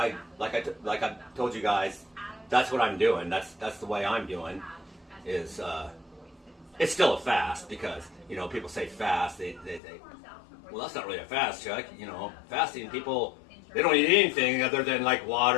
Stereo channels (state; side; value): drops out; right; at 9.8 s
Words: told you guys, that's what I'm doing. That's the way I'm doing. Is it's still a fast because you know people say fast. They say, well, that's not really a fast, Chuck. You know, fasting people they don't eat anything other than like